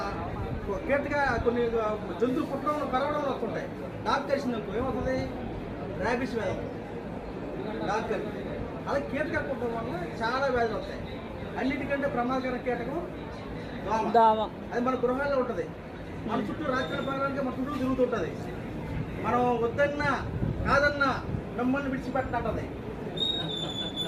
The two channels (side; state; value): both; identical; correlation 1.00